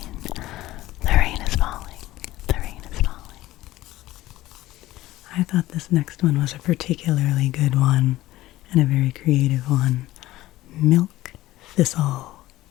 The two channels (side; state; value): right; quieter; 16.4 dB